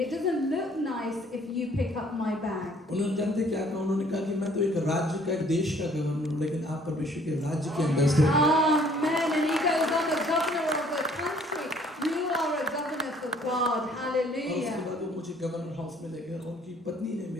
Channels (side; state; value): both; normal; correlation 0.58